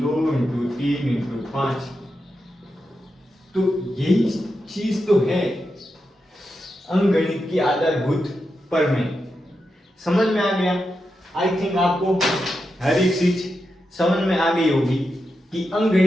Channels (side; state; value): both; normal; correlation 0.87